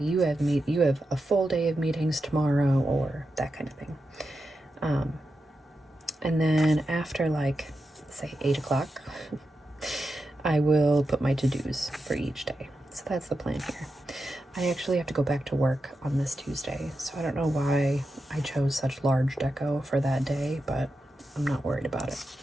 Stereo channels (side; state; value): both; normal; correlation 0.89